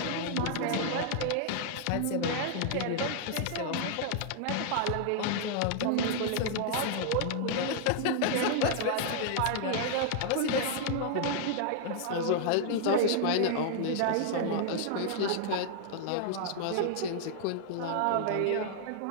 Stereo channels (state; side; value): different; both; correlation -0.01